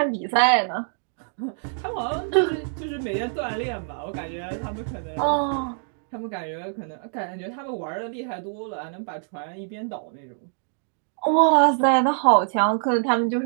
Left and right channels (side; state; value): left; silent; 62 dB below the other